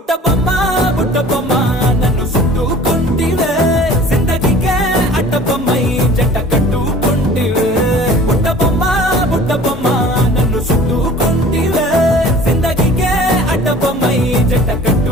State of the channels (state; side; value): normal; both; correlation 0.46